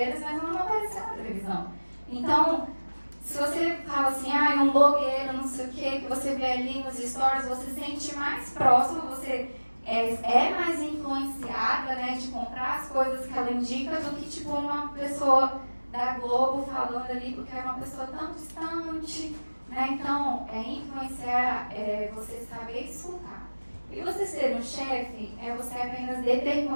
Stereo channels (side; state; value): both; inverted; correlation -1.00